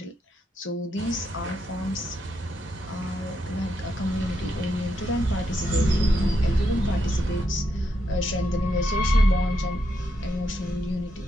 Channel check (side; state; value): both; normal; correlation 0.81